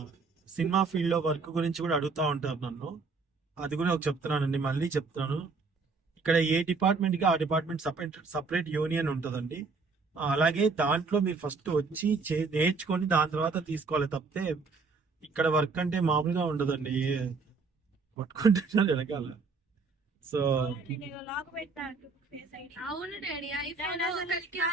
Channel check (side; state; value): left; quieter; 4.4 dB